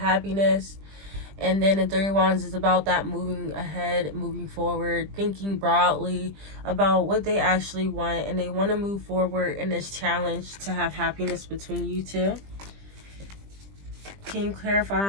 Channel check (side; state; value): left; late; 20 ms